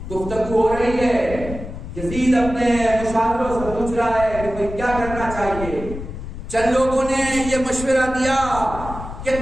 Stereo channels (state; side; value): noise; left; rumble, 10 dB below the sound